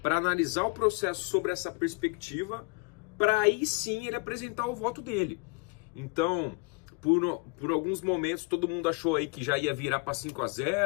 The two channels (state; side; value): quieter; right; 32.2 dB